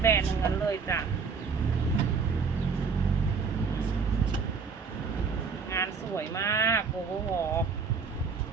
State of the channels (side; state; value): left; quieter; 5.4 dB